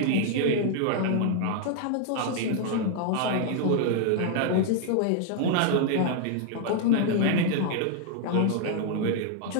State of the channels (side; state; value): both; different; correlation 0.00